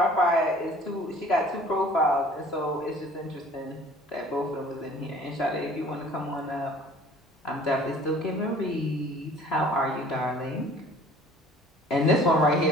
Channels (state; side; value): normal; both; correlation 0.50